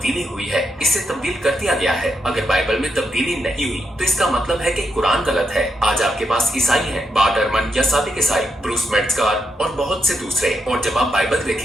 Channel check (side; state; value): both; normal; correlation 0.82